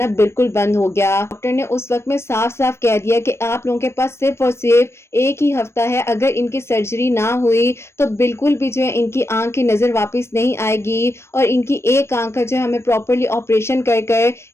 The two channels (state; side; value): late; right; 0.13 ms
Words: بالکل بند ہو گیا. ڈاکٹر نے اس وقت میں صاف صاف کہہ دیا کہ آپ لوگوں کے پاس صرف اور صرف ایک ہی ہفتہ ہے، اگر ان کی سرجری نہ ہوئی تو بالکل بھی جو ہے ان کی آنکھ کی نظر واپس نہیں آئے گی اور ان کی ایک آنکھ کا جو ہے ہمیں پراپرلی آپریشن کر کر